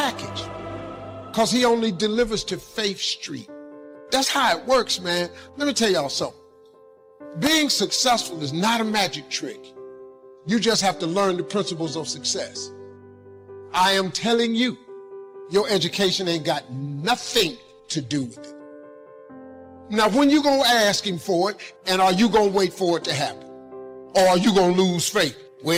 because He only delivers to Faith Street. That's how it works, man. Let me tell y'all something. Being successful is not a magic trick. You just have to learn the principles of success. I am telling you, your education ain't got nothing to do with it. Now, when you gonna ask Him for it, and are you gonna wait for it to happen? Or are you gonna lose faith?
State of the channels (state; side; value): identical; both; correlation 1.00